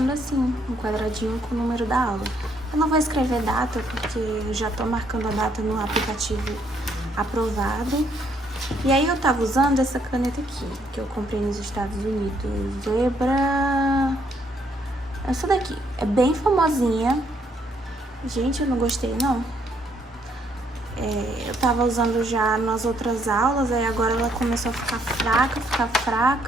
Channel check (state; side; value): normal; both; correlation 0.70